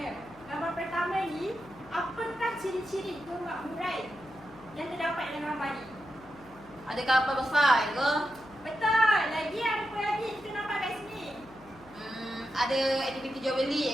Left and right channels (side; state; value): left; noise; hum, 23 dB below the sound